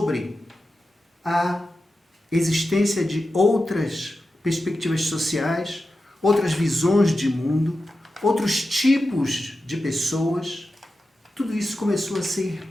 a existência de outras perspectivas sociais, outras visões de mundo, outros tipos de pessoas. Tudo isso começou a ser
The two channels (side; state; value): both; normal; correlation 0.91